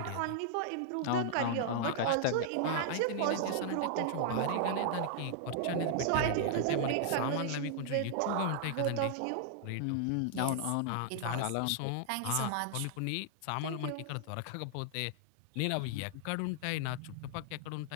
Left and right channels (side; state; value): both; different; correlation -0.01